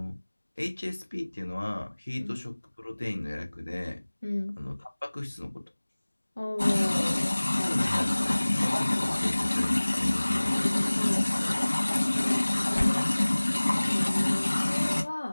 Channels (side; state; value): both; inverted; correlation -1.00